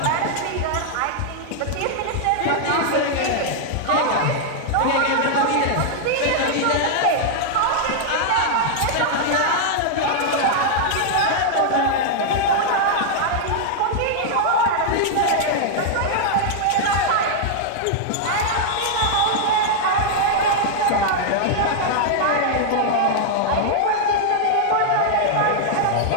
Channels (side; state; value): both; different; correlation -0.01